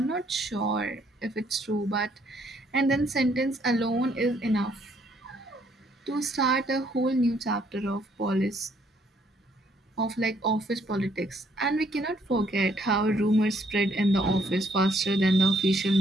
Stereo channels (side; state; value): both; normal; correlation 0.67